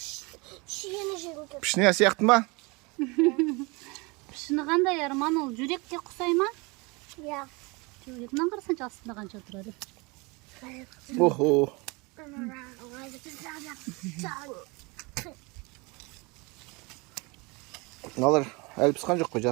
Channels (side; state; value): left; quieter; 27.1 dB